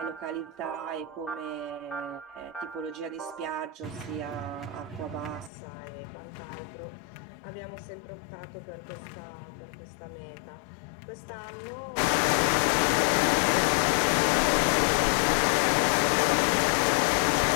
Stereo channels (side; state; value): right; drops out; at 5.5 s